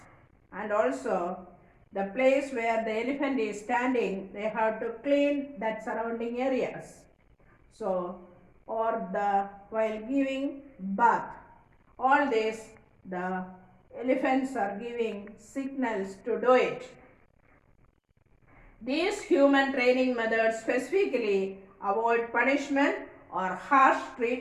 And also the place where the elephant is standing, they have to clean that surrounding areas. So, or while giving bath, all this the elephants are giving signals to do it. These human training methods specifically avoid punishment or harsh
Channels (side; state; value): both; identical; correlation 1.00